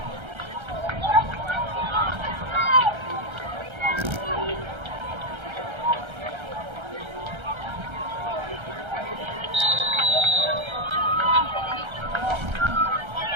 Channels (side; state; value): left; late; 1.3 ms